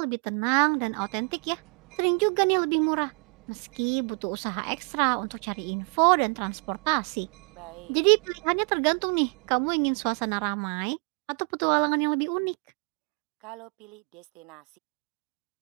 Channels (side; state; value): left; quieter; 36.7 dB